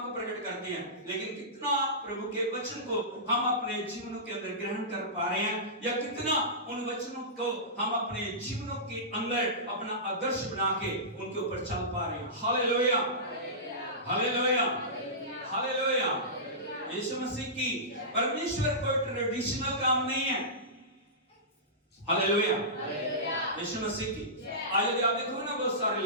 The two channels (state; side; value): normal; both; correlation -0.19